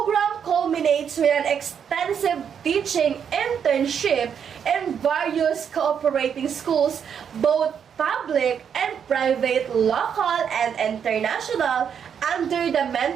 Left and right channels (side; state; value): left; quieter; 7.7 dB